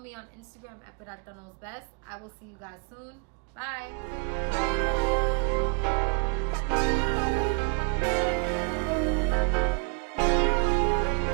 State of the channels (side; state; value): left; quieter; 34.5 dB